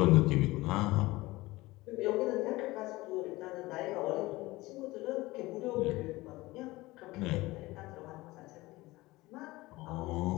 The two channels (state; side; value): quieter; right; 20.0 dB